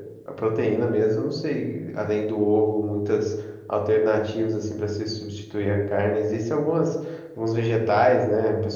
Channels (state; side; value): identical; both; correlation 1.00